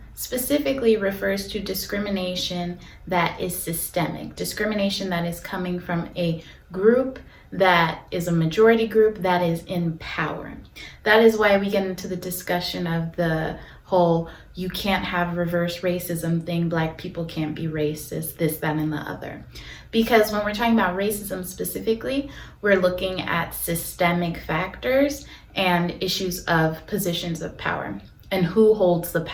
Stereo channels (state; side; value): identical; both; correlation 1.00